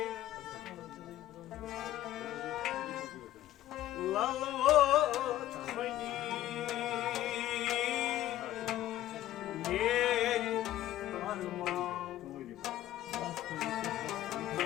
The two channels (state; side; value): quieter; right; 13.9 dB